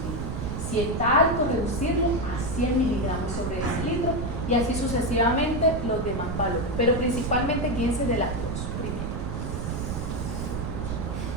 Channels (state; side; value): noise; right; rumble, 3 dB below the sound